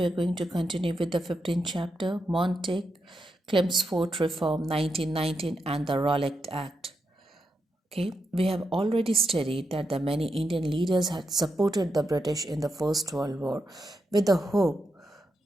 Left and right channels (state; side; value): normal; both; correlation 0.85